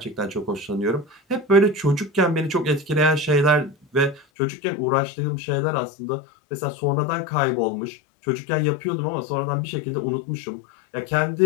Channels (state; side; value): drops out; right; at 4.2 s